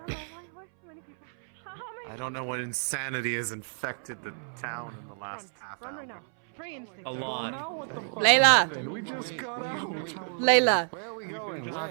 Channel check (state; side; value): silent; left; 58 dB below the other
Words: I don't know what insanity has infected the town in the last half Run hour. right now. Pray instinct. A lot. Layla. We just got out. Layla. Where are we going?